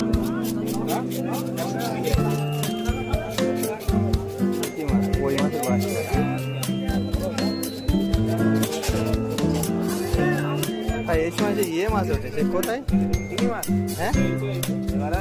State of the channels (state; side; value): identical; both; correlation 1.00